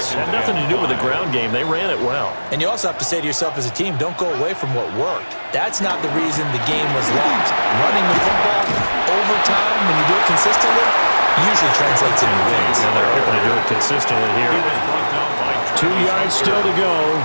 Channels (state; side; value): inverted; both; correlation -1.00